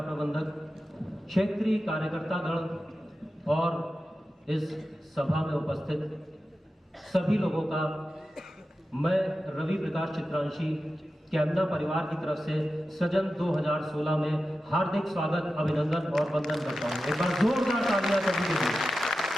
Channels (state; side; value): normal; both; correlation 0.92